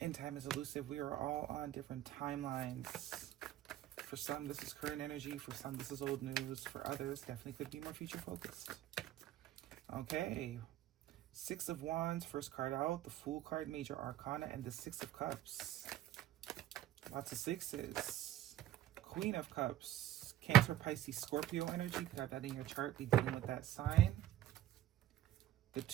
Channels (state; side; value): quieter; left; 12.7 dB